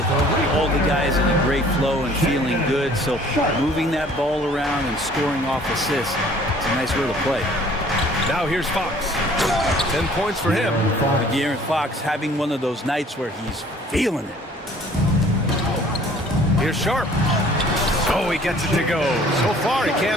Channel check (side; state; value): both; normal; correlation 0.54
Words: all the guys in a great flow and feeling good. So moving that ball around and scoring off assists, it's a nice way to play. Now here's Fox. 10 points for him. De'Aaron Fox having one of those nights where he's feeling it. Here's Sharp. Oh, he gets it to go. So far, he